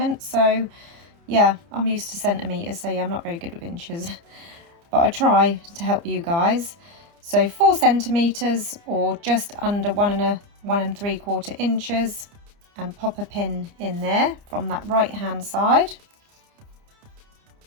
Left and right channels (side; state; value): left; late; 29 ms